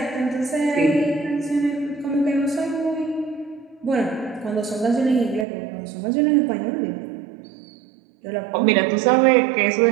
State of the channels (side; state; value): left; drops out; at 5.5 s